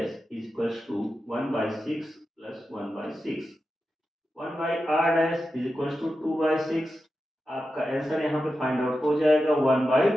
is equals to 1 by 6 plus 1 by 6। 1 by r dash is equals to 2 by 6। आपका आंसर यहाँ पे फाइंड आउट हो जाएगा 1 by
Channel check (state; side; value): normal; both; correlation 0.91